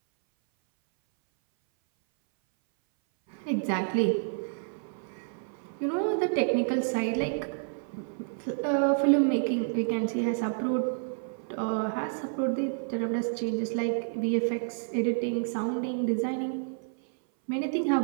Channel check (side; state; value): left; silent; 58 dB below the other